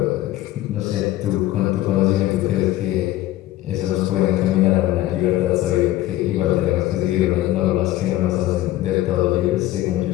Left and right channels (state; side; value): quieter; right; 15.3 dB